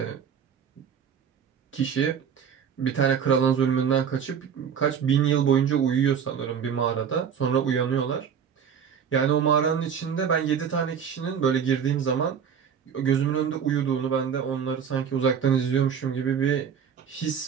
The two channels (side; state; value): left; quieter; 7.5 dB